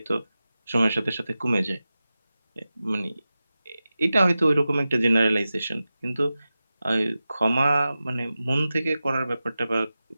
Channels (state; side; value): inverted; both; correlation -0.94